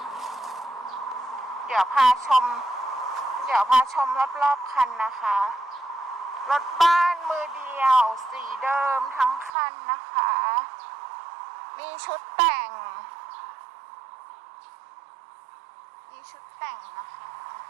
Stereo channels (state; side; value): drops out; left; at 9.5 s